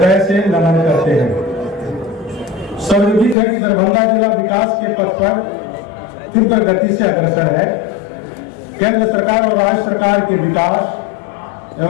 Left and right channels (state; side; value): drops out; right; at 3.4 s